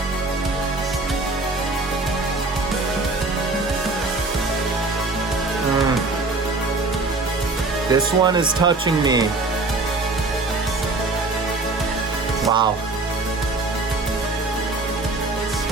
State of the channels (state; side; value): quieter; left; 3.4 dB